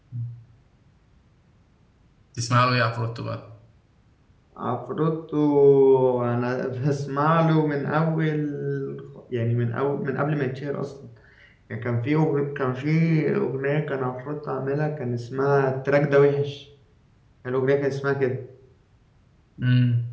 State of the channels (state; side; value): identical; both; correlation 1.00